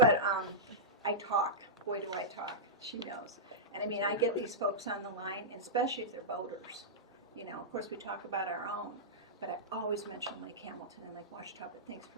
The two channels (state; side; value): normal; both; correlation -0.12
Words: I talk. Boy, do I talk. She knows. And I mean, I get these folks on the line, and especially if they're boaters. You know, of course, we talk about our own, but I always mention Lake Hamilton and Lake Washita. But thanks